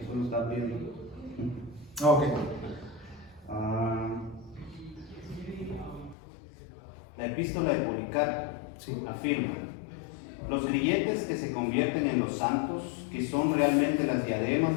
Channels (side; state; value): right; drops out; at 6.2 s